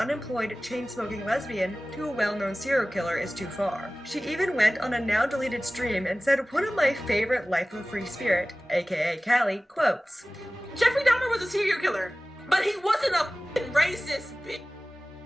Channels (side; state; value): both; normal; correlation 0.98